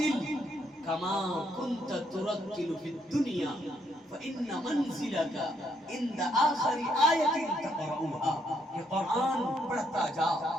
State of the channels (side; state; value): both; normal; correlation 0.73